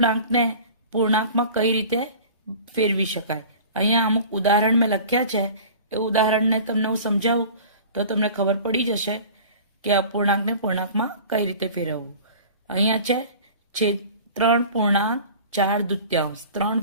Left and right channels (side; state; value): both; inverted; correlation -0.41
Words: પૂર્ણાંકમાં કઈ રીતે ફેરવી શકાય. અહીંયા અમુક ઉદાહરણ મેં લખ્યા છે, એ ઉદાહરણને તમને હું સમજાવું તો તમને ખબર પડી જશે કે અપૂર્ણાંકને પૂર્ણાંકમાં કઈ રીતે ફેરવવું. અહીંયા છે 3.4